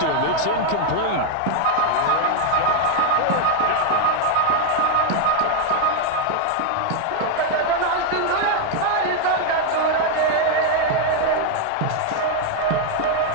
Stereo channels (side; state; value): both; different; correlation 0.00